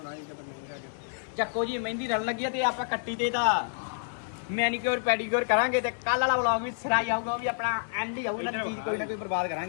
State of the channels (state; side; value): silent; right; digital silence